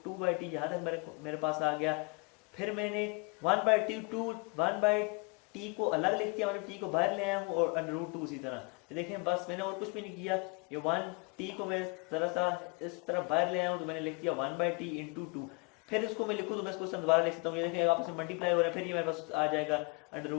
2 by T, यहाँ तक मेरे पास आ गया। फिर मैंने 1 बाई टी को अलग लिख दिया, मतलब टी को बाहर ले आया हूँ, और अंडर रूट 2 उसी तरह। देखें बस मैंने और कुछ भी नहीं किया, ये 1 टी को मैं जरा सा इस तरह बाहर ले आया हूँ, तो मैंने लिख दिया 1 बाई टी इंटू 2। फिर इसको मैं लिखूँ तो मैं इसको दोबारा लिख सकता हूँ, ये देखें आपस में मल्टीप्लाई हो रहा है, फिर ये मेरे पास आ जाएगा अंडर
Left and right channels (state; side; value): quieter; right; 30.6 dB